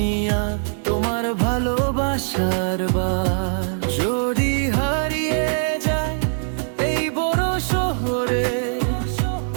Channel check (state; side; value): silent; left; digital silence